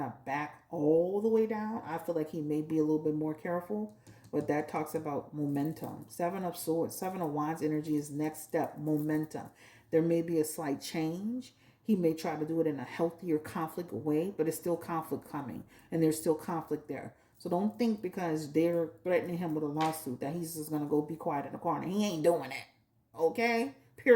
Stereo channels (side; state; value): both; identical; correlation 1.00